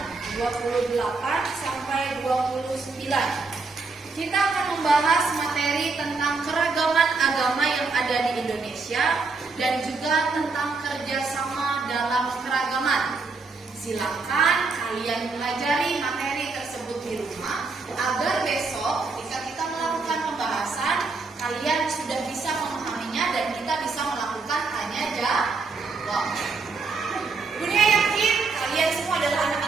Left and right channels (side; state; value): left; quieter; 4.2 dB